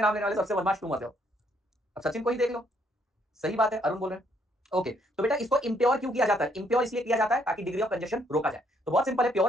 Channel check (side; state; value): both; normal; correlation 0.69